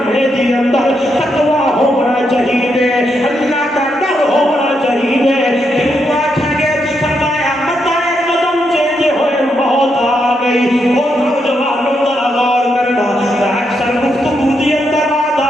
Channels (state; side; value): normal; both; correlation 0.81